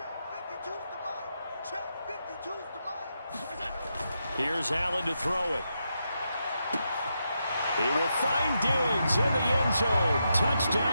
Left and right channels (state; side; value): inverted; both; correlation -0.84